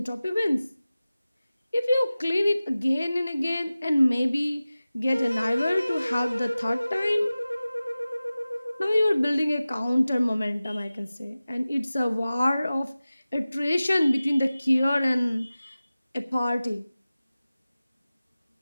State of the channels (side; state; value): both; inverted; correlation -0.96